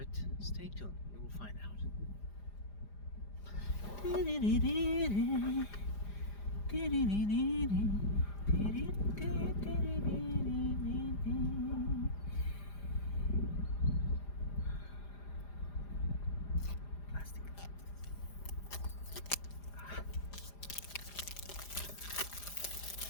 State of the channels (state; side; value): late; right; 4.9 ms